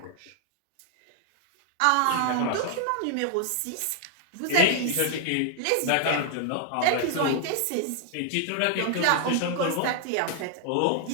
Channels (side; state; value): both; different; correlation -0.01